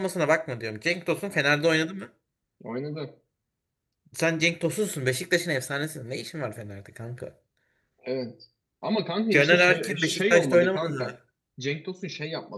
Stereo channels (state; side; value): identical; both; correlation 1.00